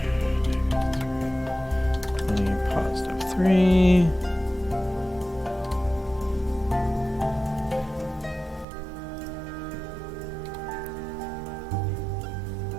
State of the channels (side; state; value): left; drops out; at 8.7 s